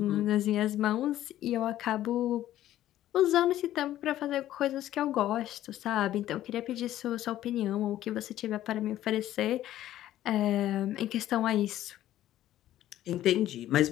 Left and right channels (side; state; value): right; quieter; 13.2 dB